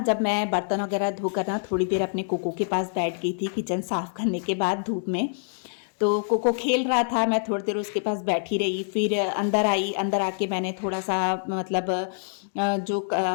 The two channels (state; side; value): silent; right; digital silence